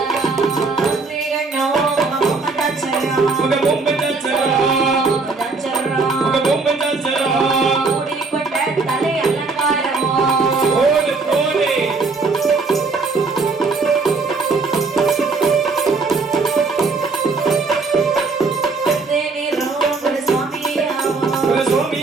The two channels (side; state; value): left; quieter; 4.1 dB